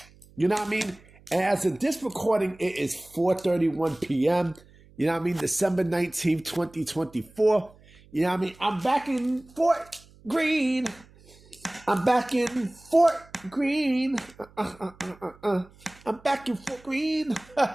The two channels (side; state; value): right; noise; hum, 26 dB below the sound